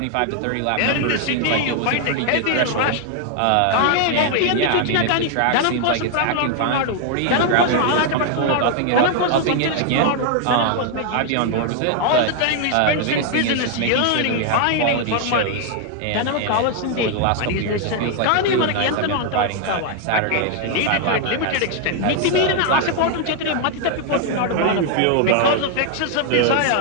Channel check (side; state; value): both; different; correlation 0.00